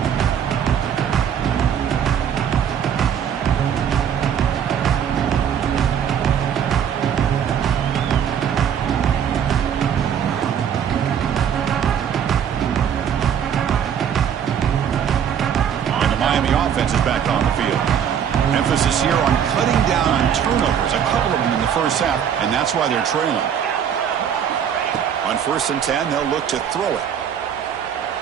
Offense is back on the field. Emphasis here on cutting down on turnovers, a couple of them in the first half, and that's why they're trailing. On 1st and 10, they'll look to throw it.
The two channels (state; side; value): quieter; left; 8.5 dB